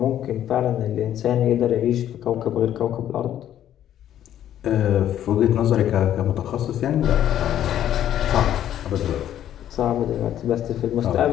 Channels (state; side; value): quieter; right; 11.2 dB